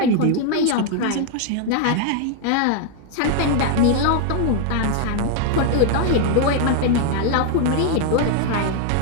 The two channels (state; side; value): different; both; correlation 0.00